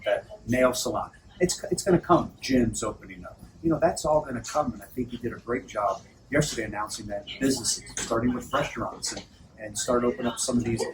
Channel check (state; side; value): identical; both; correlation 1.00